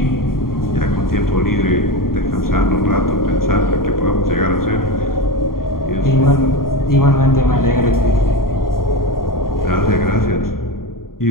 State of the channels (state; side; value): late; right; 0.92 ms